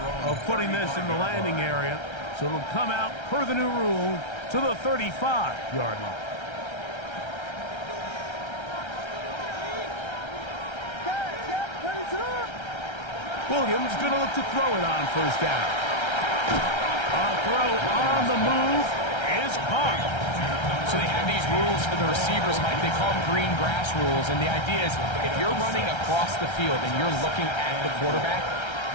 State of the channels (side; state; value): right; late; 1.3 ms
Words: of putting this in the landing area, so it'll come out per the new rule to the 35-yard line. Williams going to look to throw it on first down. A throw on the move is caught. So they have these rules for the receivers, Mike. They call them green grass rules, and the idea is if you're running across the field and you're looking at the quarterback,